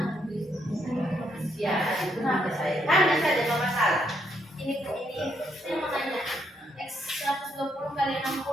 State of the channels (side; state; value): both; normal; correlation 0.75